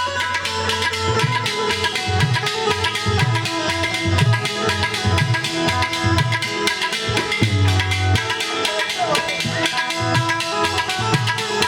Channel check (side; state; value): both; identical; correlation 1.00